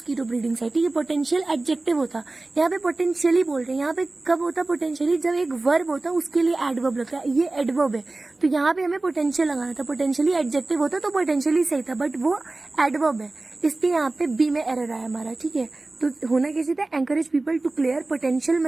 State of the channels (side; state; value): left; quieter; 3.1 dB